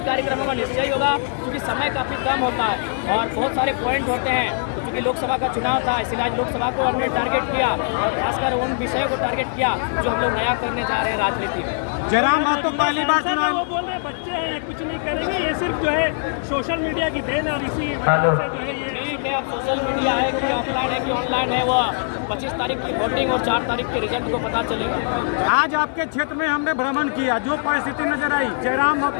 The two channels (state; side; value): silent; right; digital silence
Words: कार्यक्रम होगा निश्चय होगा, क्योंकि समय काफ़ी कम होता है और बहुत सारे पॉइंट होते हैं, तो क्योंकि लोकसभा का चुनाव था इसलिए आज लोकसभा को हमने टारगेट किया और खासकर उन विषयों को टारगेट किया जो हम लोग नया करने जा रहे हैं राजनीति में। जयराम महतो पहली बार चुनाव, वो बोल रहे बच्चे हैं, ये कुछ नहीं करेंगे, ये सिर्फ जो है सोशल मीडिया की देन और इसी वजह से जो है ये ठीक है। अब सोशल मीडिया है कि ऑफलाइन है कि ऑनलाइन है, वो 25 तारीख की वोटिंग और 4 तारीख के रिजल्ट को पता चलेगा। आज आपके क्षेत्र में हमने भ्रमण किया, जो परिस्थिति नजर आई, जयराम